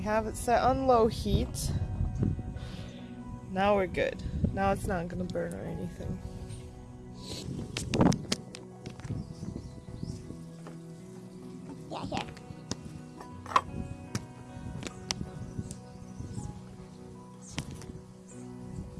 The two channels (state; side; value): identical; both; correlation 1.00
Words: have it set on low heat. Now we're good. Now it's not gonna burn or anything. Yeah, here.